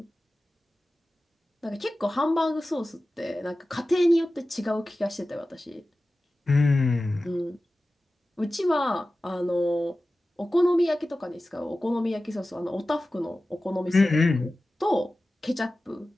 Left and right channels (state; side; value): normal; both; correlation 0.95